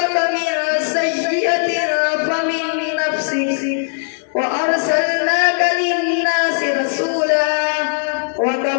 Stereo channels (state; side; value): silent; right; digital silence